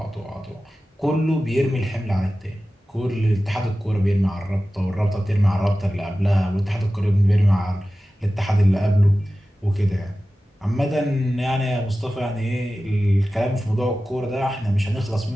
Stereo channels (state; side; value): normal; both; correlation 0.95